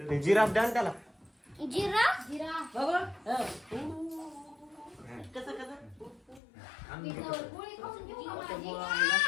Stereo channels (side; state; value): right; drops out; at 6.4 s